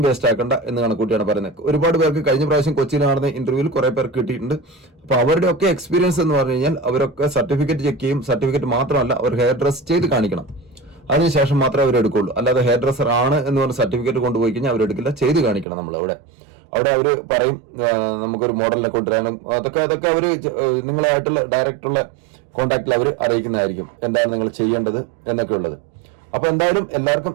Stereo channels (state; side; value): drops out; left; at 15.7 s